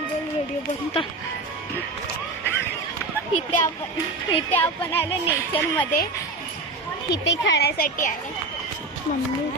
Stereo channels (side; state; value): left; quieter; 3.3 dB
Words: व्हिडिओ बनता. इथे आपण आलो नेचर मध्ये. इथे खेळण्यासाठी आहे. मम्मी